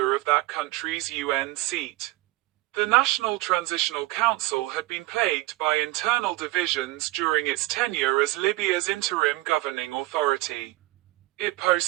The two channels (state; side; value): quieter; left; 20.3 dB